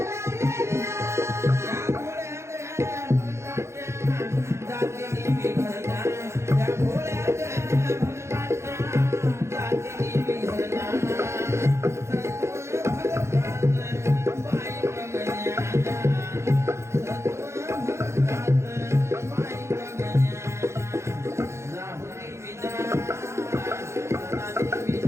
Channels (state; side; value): late; left; 0.13 ms